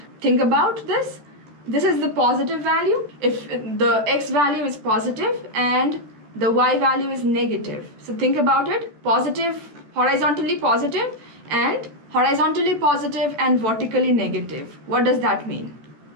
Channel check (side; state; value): left; late; 14 ms